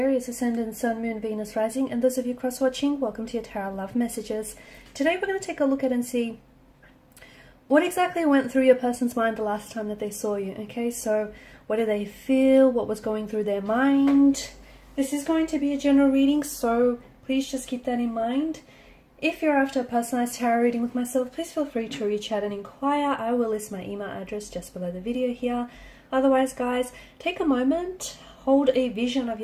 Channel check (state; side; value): identical; both; correlation 1.00